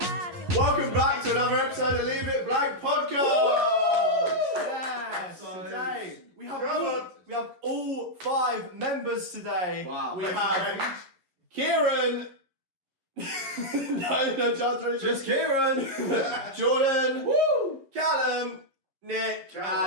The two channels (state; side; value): late; left; 11 ms